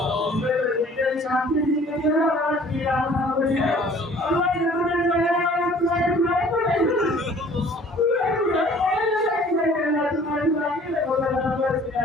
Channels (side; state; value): both; normal; correlation 0.52